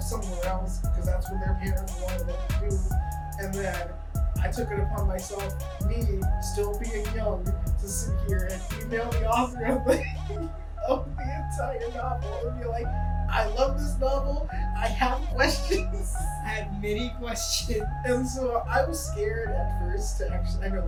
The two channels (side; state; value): both; identical; correlation 1.00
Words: somewhere else because that's what their parents wanted them to do. And then I took it upon myself, me still being young, to sit here and email the author of the entire novel and be like, I love this novel, I have questions. I had many questions. And so I was scared at first to actually, I know